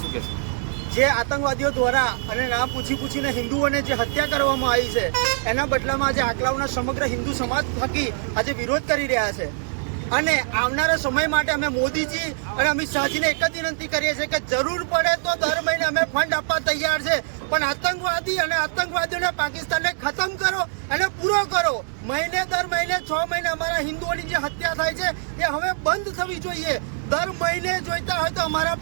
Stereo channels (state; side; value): silent; left; 62 dB below the other